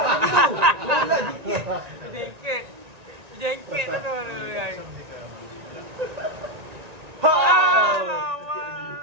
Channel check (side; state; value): left; late; 1.9 ms